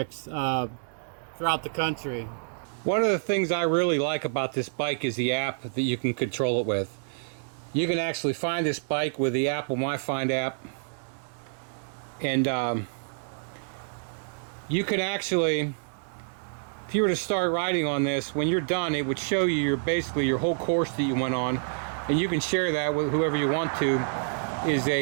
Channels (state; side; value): silent; left; digital silence